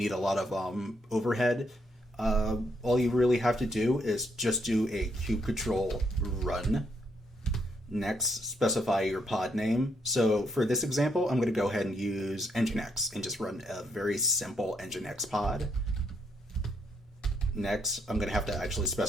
a lot of overhead. All you really have to do is just do a kubectl run. Next, specify your pod name. So for this example, I'm going to go ahead and use nginx and just run a very simple nginx pod. Next, I'm going to have to actually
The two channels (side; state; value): both; normal; correlation 0.75